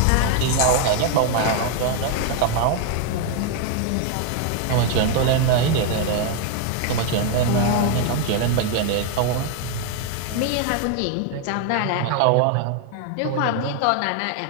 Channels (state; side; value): different; both; correlation 0.01